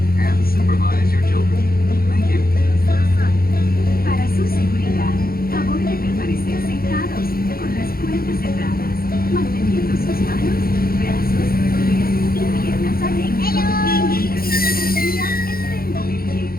And supervise your children. Thank you. Para su seguridad, favor de permanecer sentados con las puertas cerradas, manteniendo sus manos, brazos, pies y piernas adentro mientras la energía está en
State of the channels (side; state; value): right; late; 0.43 ms